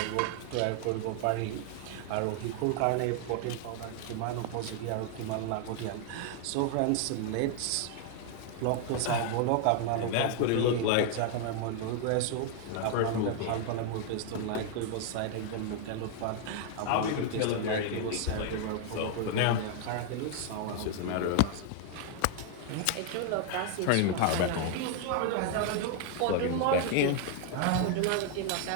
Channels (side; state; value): both; different; correlation 0.00